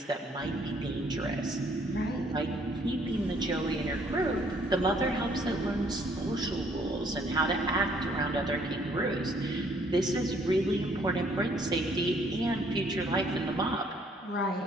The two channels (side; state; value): both; normal; correlation 0.64